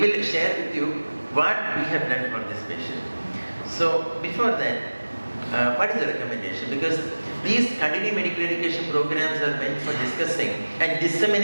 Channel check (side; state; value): both; inverted; correlation -1.00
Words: share with you what we have done for this patient. So before that, what is the recommendation? Because these continuing medical education programs are meant for discussing and